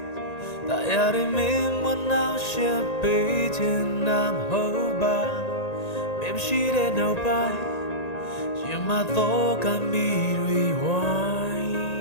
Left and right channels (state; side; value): late; right; 1.9 ms